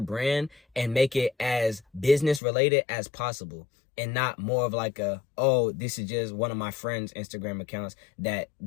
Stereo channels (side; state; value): right; drops out; at 2.4 s